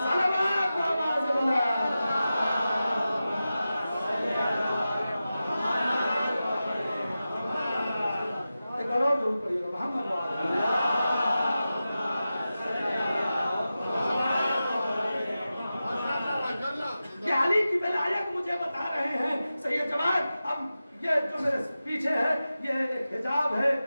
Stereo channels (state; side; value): inverted; both; correlation -0.93